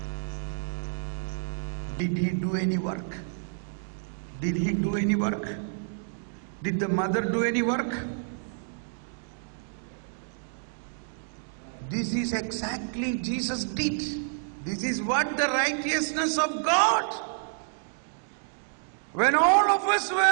Did he do any work? Did he do any work? Did the mother do any work? This is exactly Jesus did. This is what the righteousness of God. When all of us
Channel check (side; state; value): left; silent; digital silence